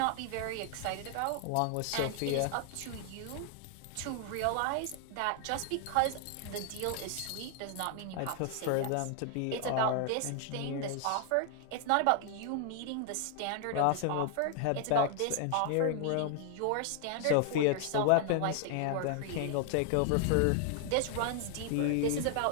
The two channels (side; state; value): both; different; correlation 0.00